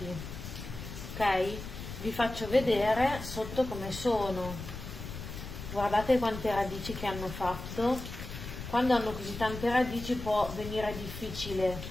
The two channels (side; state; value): left; noise; rumble, 9 dB below the sound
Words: ok? Vi faccio vedere sotto come sono. Guardate quante radici che hanno fatto. Quando hanno così tante radici può venire